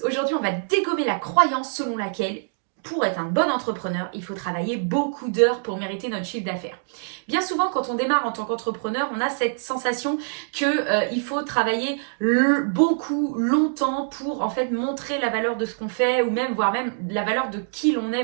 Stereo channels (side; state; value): left; silent; digital silence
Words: aujourd'hui on va dégommer la croyance selon laquelle pour être un bon entrepreneur, il faut travailler beaucoup d'heures pour mériter notre chiffre d'affaires. Bien souvent, quand on démarre en tant qu'entrepreneur, on a cette sensation qu'il faut travailler beaucoup, longtemps pour en fait montrer la valeur de ce qu'on fait ou même voire même la valeur de qui l'on est